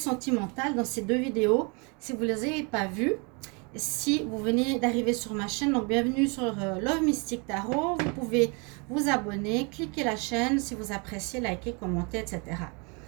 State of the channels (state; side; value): quieter; left; 32.5 dB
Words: dans ces deux vidéos. Si vous ne les avez pas vues, si vous venez d'arriver sur ma chaîne, donc bienvenue sur Love Mystic Tarot. Vous pouvez vous abonner, cliquer la chaîne si vous appréciez, liker, commenter, etc.